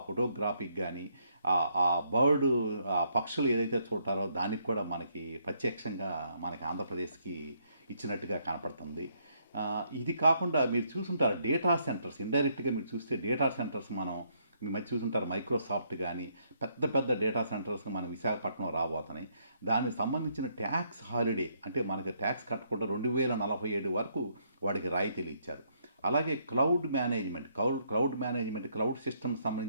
ఫోటోగ్రాఫీకి కానీ, ఆ బర్డ్ ఆ పక్షులు ఏదైతే చూడటారో దానికి కూడా మనకి ప్రత్యక్షంగా మనకి ఆంధ్రప్రదేశ్కి ఇచ్చినట్టుగా కనపడుతుంది. ఇది కాకుండా మీరు చూసుంటారు డేటా సెంటర్స్. ఇండైరెక్ట్గా మీరు చూస్తే డేటా సెంటర్స్ మీ మధ్య చూసుంటారు. మైక్రోసాఫ్ట్ కానీ పెద్ద పెద్ద డేటా సెంటర్స్ మన విశాఖపట్నం రాబోతున్నాయి. దానికి సంబంధించిన ట్యాక్స్ హాలిడే అంటే మనకి ట్యాక్స్ కట్టకుండా 2047 వరకు వాడికి రాయితీలు ఇచ్చారు. అలాగే క్లౌడ్ మేనేజ్మెంట్ క్లౌడ్ సిస్టమ్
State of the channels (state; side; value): inverted; both; correlation -0.72